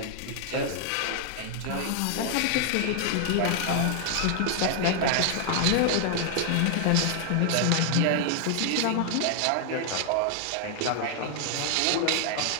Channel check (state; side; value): different; both; correlation 0.00